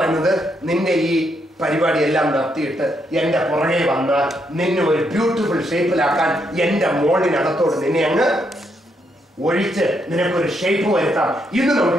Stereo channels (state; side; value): normal; both; correlation 0.77